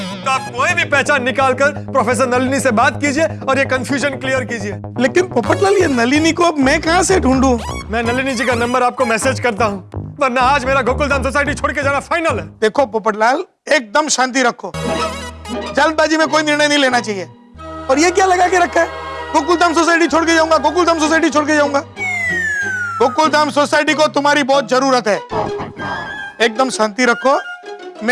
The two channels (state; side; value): identical; both; correlation 1.00